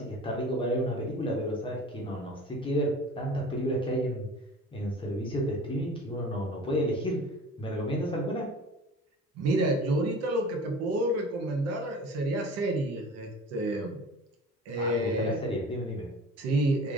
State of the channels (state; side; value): normal; both; correlation 0.41